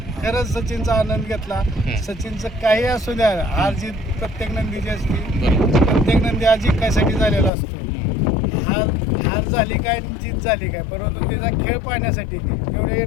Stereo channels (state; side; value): drops out; right; at 7.5 s